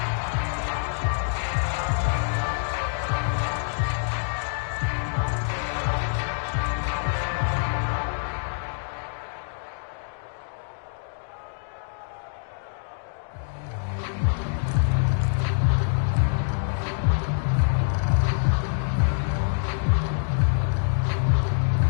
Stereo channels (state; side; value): silent; right; digital silence